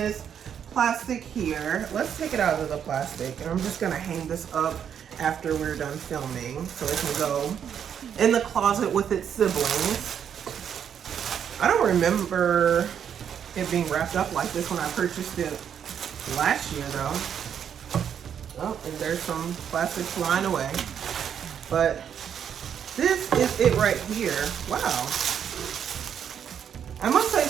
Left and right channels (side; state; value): left; quieter; 8.4 dB